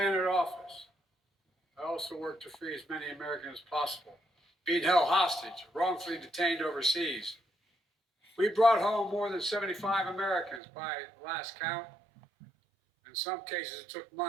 entered office, I also worked to free as many Americans as possible being held hostage, wrongfully detained overseas. We brought home more than 75 Americans by last count. In some cases, it took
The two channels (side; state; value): left; drops out; at 10.6 s